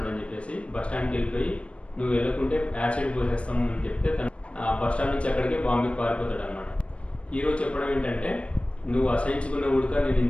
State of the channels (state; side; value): late; right; 0.061 ms